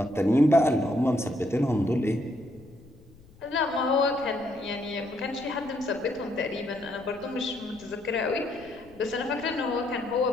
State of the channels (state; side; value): noise; left; rumble, 25 dB below the sound